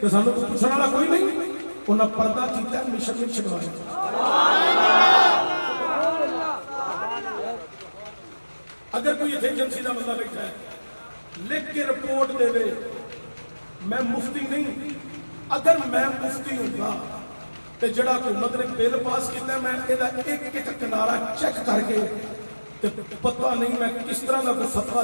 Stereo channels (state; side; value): inverted; both; correlation -1.00